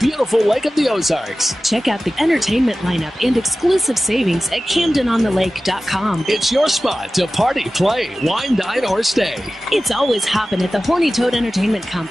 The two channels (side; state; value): both; normal; correlation 0.95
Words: Lake of the Ozarks. Check out the entertainment lineup and exclusive savings at CamdenOnTheLake.com. It's your spot to party, play, wine, dine, or stay. It's always hopping at the Horny Toad Entertainment